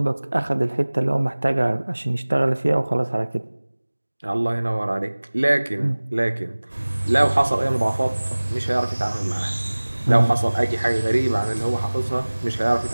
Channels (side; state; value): both; inverted; correlation -1.00